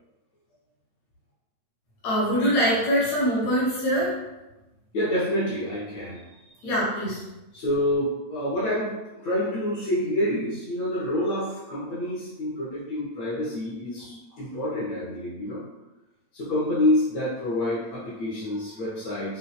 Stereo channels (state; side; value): late; right; 8.7 ms